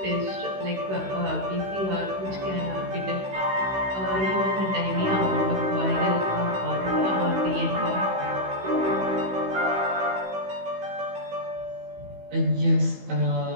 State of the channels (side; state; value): left; late; 16 ms